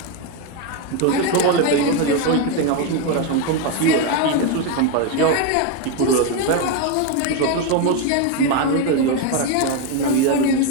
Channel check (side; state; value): both; different; correlation 0.02